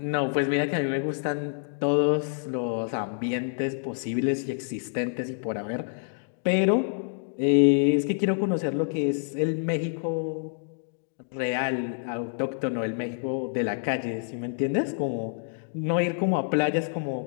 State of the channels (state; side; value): silent; right; digital silence